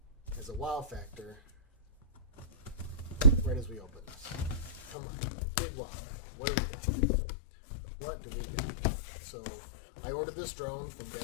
as a wow factor right as we open this. Come on, big wow factor. What do we got? What do we got? So I ordered this drone from Get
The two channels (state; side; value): drops out; right; at 5.0 s